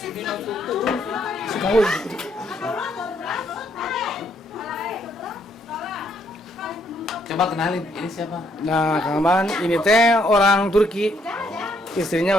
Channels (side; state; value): both; normal; correlation 0.71